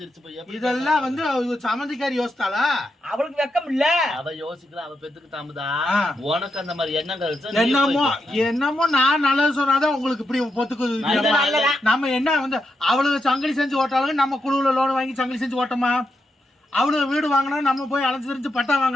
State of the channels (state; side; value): normal; both; correlation 0.84